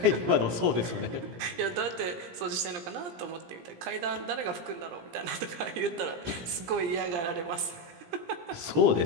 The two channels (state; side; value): late; left; 17 ms